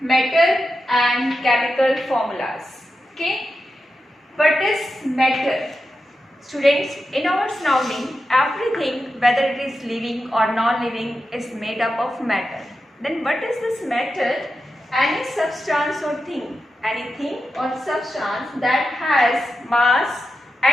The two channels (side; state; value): both; normal; correlation 0.90